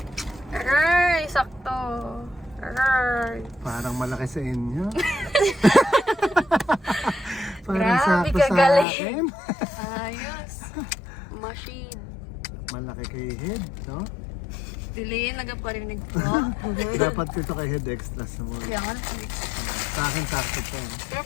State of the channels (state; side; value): drops out; right; at 8.8 s